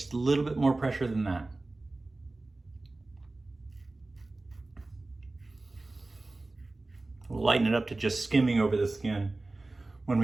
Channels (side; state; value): left; quieter; 3.1 dB